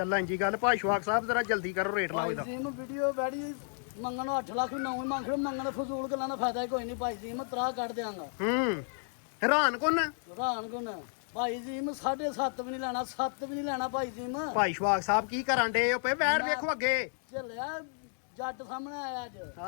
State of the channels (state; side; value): silent; right; 56 dB below the other